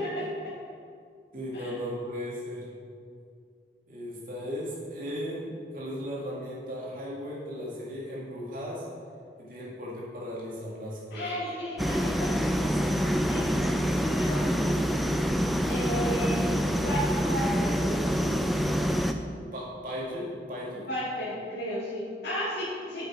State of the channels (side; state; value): both; normal; correlation 0.78